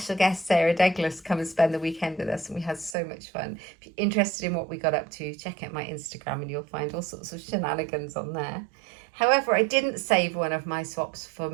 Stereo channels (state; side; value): drops out; left; at 3.0 s